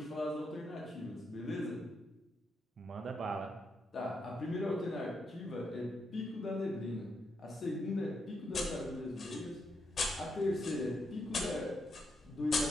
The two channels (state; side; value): normal; both; correlation 0.81